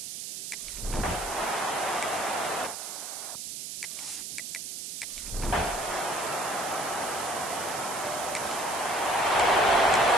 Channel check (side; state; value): right; noise; hiss, 6 dB below the sound